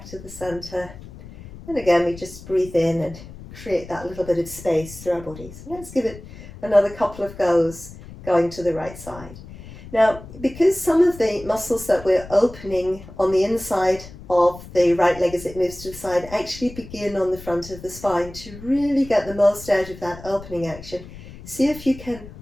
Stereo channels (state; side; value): noise; left; rumble, 16 dB below the sound